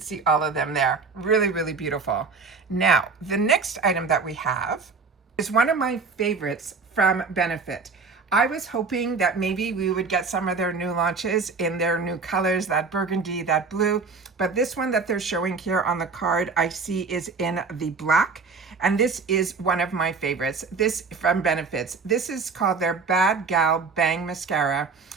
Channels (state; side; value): quieter; left; 4.6 dB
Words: see all of them there. Really, really beautiful. Now, the next item that we have is one of my favorites from Benefit. I was hoping that maybe we would get some of their new launches in their new colors, that burgundy, that blue, but this one that they're showing here on the card I see is in the black, and this is one of my favorites. This from Benefits. This is called their Bad Gal Bang Mascara.